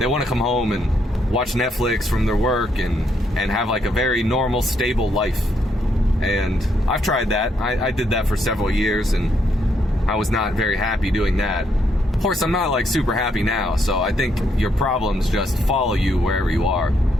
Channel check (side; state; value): both; normal; correlation 0.75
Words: come home and watch Netflix from their work and have like a very normal, stable life. And I've tried that. I did that for several years and I was not very happy doing that. Of course, I'm not like super happy now, so I think your problems just follow you wherever you are.